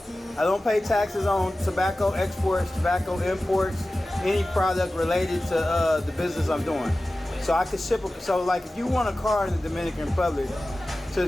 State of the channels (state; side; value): normal; both; correlation 0.95